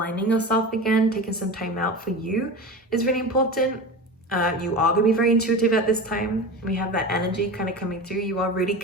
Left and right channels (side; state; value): both; normal; correlation 0.28